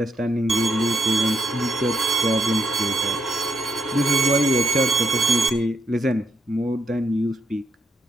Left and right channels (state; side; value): normal; both; correlation 0.75